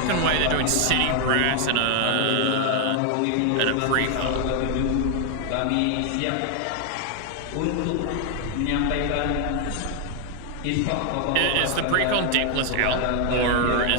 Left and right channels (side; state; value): both; different; correlation 0.00